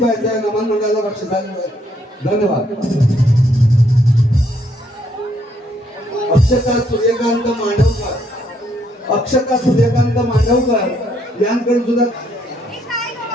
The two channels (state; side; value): normal; both; correlation 0.71